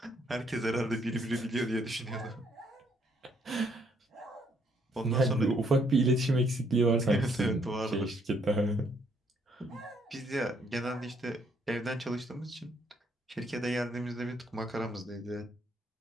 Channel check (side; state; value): both; normal; correlation 0.69